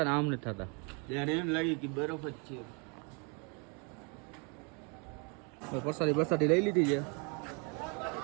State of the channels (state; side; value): quieter; left; 34.3 dB